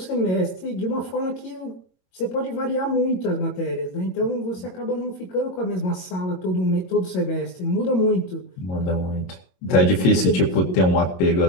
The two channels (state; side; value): late; right; 22 ms